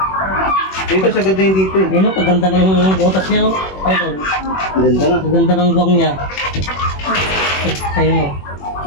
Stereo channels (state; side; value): late; right; 21 ms